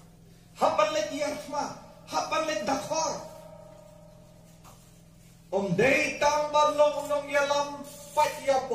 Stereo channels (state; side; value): identical; both; correlation 1.00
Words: hapan let yarfma hapan let dakhar om day tang balong nong yalam Pat ya